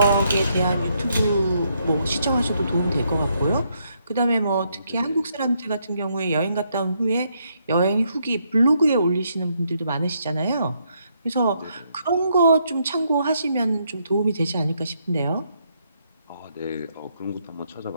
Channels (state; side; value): inverted; both; correlation -0.75